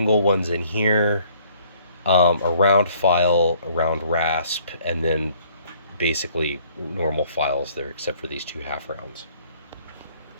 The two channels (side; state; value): both; inverted; correlation -0.60